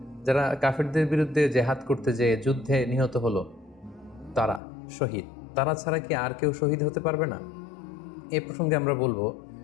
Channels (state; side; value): drops out; right; at 4.6 s